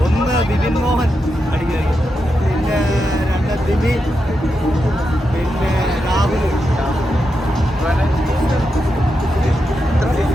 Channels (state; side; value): normal; both; correlation 0.86